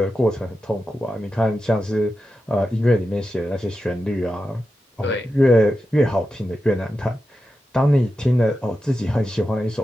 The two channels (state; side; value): normal; both; correlation 0.90